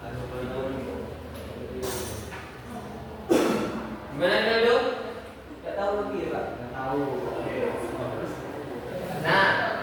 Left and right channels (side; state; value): both; identical; correlation 1.00